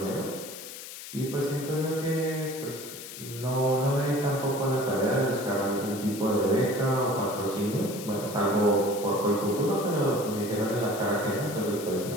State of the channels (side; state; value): left; noise; hiss, 12 dB below the sound